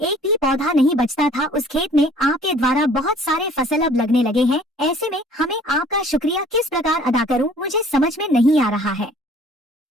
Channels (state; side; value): normal; both; correlation 0.53